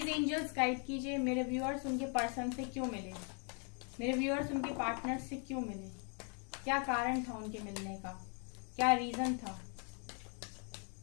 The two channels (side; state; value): right; quieter; 39.6 dB